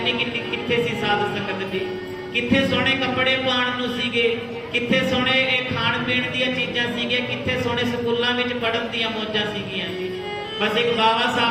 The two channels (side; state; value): both; identical; correlation 1.00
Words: ਕਿੱਥੇ ਸੀ ਸਾਧ ਸੰਗਤ ਜੀ। ਕਿੱਥੇ ਸੋਹਣੇ ਕੱਪੜੇ ਪਾਉਣ ਨੂੰ ਸੀਗੇ, ਕਿੱਥੇ ਸੋਹਣੇ ਇਹ ਖਾਣ ਪੀਣ ਦੀਆਂ ਚੀਜ਼ਾਂ ਸੀਗੀਆਂ, ਕਿੱਥੇ ਸੋਹਣੇ ਸਕੂਲਾਂ ਵਿੱਚ ਪੜ੍ਹਨ ਦੀਆਂ ਮੌਜਾਂ ਸੀਗੀਆਂ ਜੀ। ਬਸ ਇੱਕ ਬਾਬਾ